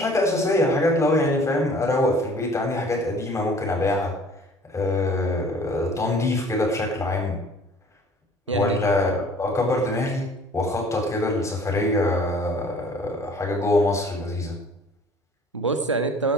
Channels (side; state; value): both; normal; correlation 0.52